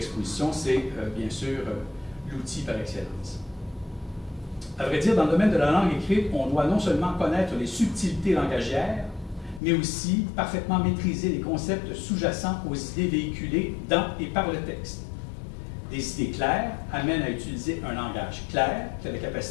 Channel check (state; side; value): drops out; right; at 9.6 s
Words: c'est bien sûr l'outil par excellence. À vrai dire, dans le domaine de la langue écrite, on doit non seulement connaître les subtilités langagières, mais aussi parfaitement maîtriser les concepts sous-jacents aux idées véhiculées dans et par le texte. Des idées claires amènent à utiliser un langage clair qui a la